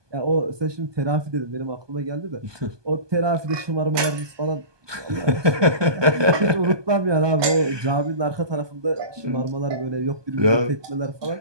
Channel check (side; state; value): left; late; 1.2 ms